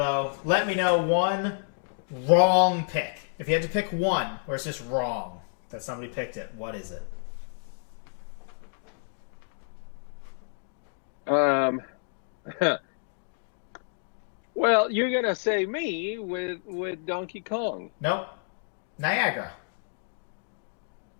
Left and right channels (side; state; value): right; silent; digital silence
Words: Let me know one wrong pick. If you had to pick one where it's just wrong that somebody picked it, what is it? Um, well, you're gonna say me with Donkey Kong. Nope. Niagara.